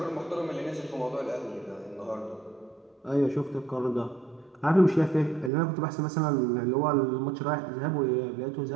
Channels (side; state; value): left; drops out; at 5.5 s